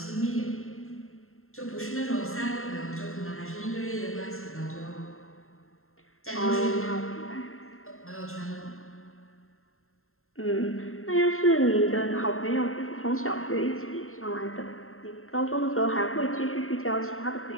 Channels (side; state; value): right; late; 0.61 ms